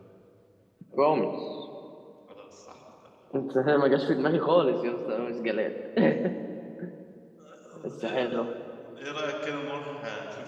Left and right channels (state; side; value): identical; both; correlation 1.00